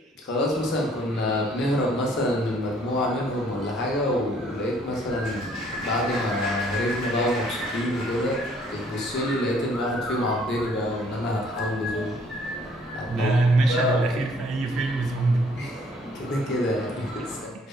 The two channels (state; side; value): normal; both; correlation 0.61